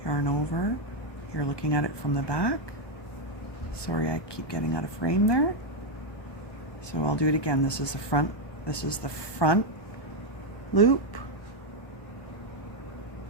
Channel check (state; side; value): late; right; 1.2 ms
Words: Yarn over. You're looking at it from the back. Sorry, I keep getting out of frame there. So I'll do it again. This is the front loop.